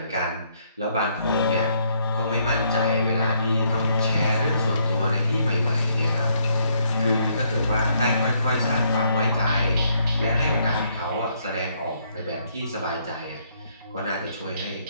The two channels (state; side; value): inverted; both; correlation -0.71